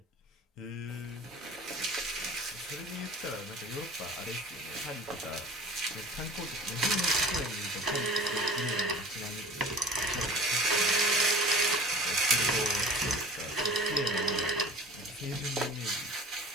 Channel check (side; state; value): both; normal; correlation 0.44